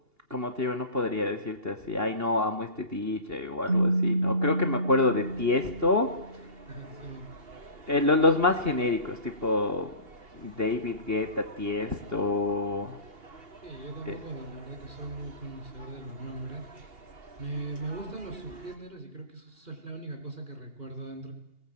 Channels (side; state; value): left; late; 2.8 ms